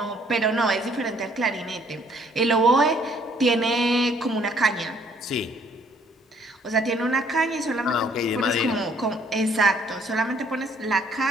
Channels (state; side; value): normal; both; correlation 0.63